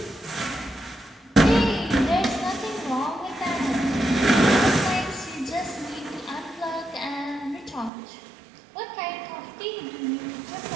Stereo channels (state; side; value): drops out; left; at 7.9 s